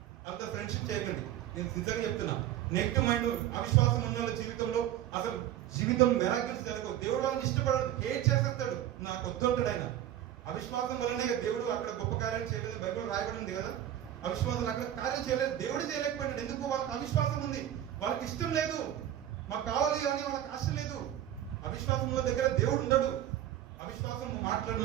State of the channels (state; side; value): quieter; left; 12.0 dB